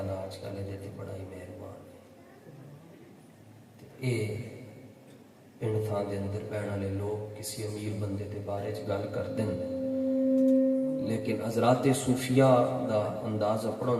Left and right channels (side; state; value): both; identical; correlation 1.00